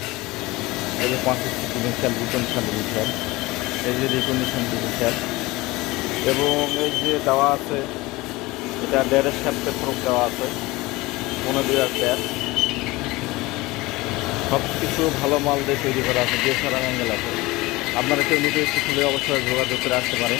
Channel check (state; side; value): quieter; right; 21.1 dB